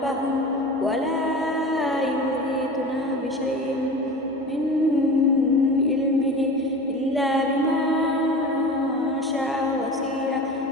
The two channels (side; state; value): both; normal; correlation 0.34